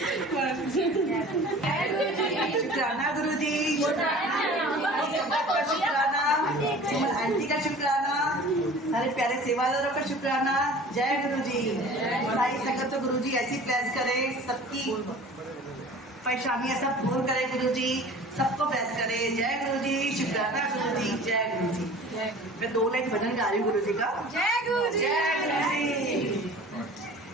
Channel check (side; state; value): both; normal; correlation 0.43